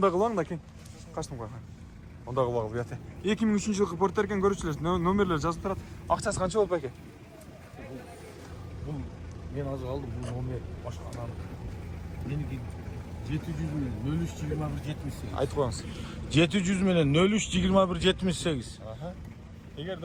кылаң да кен. Качтым кой. Анда кылбагыл буят. 2003 жылкы портер экен, көрүүчүлөр, номерлер жазып турат. Акчасы канча болуп экен? Бул мен азыр алдым, бул номер башканан. Меники 700 менен 032178. Айтып коюңуз. 700 менен 032178. Аха. Эгерде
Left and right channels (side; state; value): both; identical; correlation 1.00